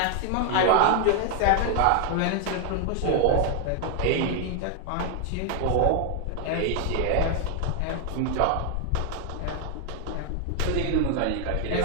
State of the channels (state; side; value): different; both; correlation 0.00